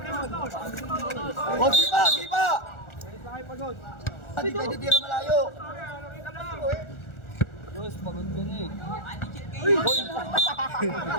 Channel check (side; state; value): right; late; 1.4 ms